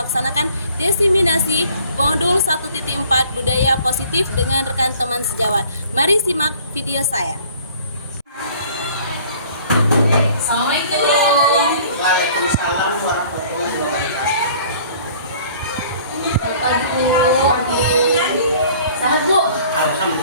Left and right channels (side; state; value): both; inverted; correlation -0.53